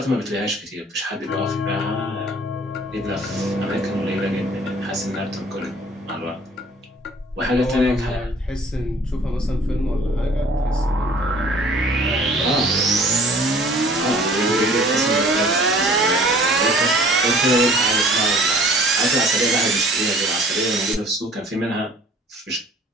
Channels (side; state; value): both; normal; correlation 0.52